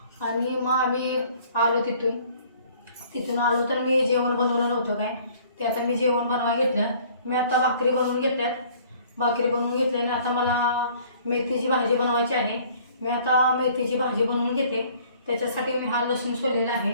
आणि मग आम्ही आलो. तिथून आलो तर मी जेवण बनवलं नव्हतं काय, ते आता मी जेवण बनवायला घेतलं. मी आता भाकरी बनवून घेतल्यात. भाकरी बनवून घेतल्याने आता मला मेथीची भाजी बनवायची आहे. मी आता मेथीची भाजी बनवून घेते. त्याच्यासाठी मी हा लसूण सोललेला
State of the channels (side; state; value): both; inverted; correlation -0.55